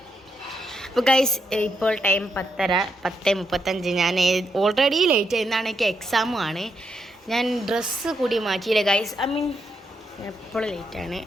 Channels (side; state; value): both; normal; correlation 0.80